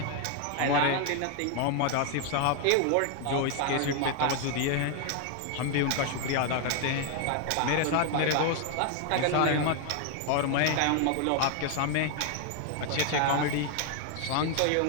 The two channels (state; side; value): different; both; correlation 0.00